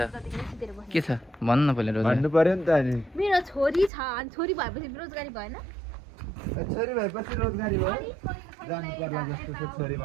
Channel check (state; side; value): drops out; left; at 3.9 s